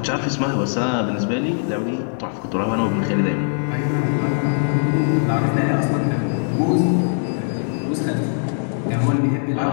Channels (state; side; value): silent; right; 61 dB below the other